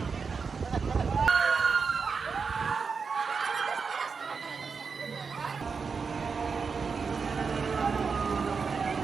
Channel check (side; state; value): left; quieter; 5.3 dB